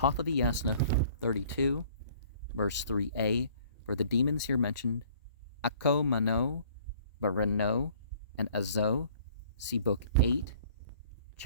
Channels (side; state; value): both; inverted; correlation -0.55